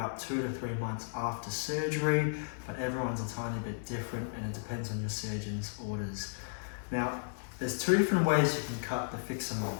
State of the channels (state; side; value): silent; right; 55 dB below the other